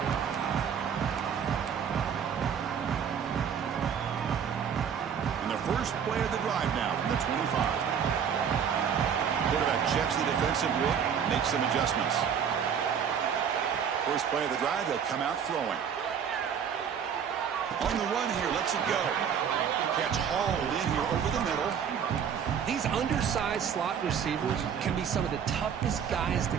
And the first play of the drive now from the 25. Quarterback checks the defensive look, makes some adjustments. First play of the drive, they'll come out throwing. On the run here, lets it go. Catch hauled in here over the middle. These undersized slot receivers can be some of the toughest guys to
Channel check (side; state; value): left; quieter; 7.7 dB